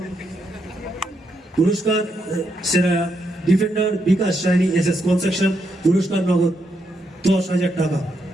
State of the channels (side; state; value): both; normal; correlation 0.80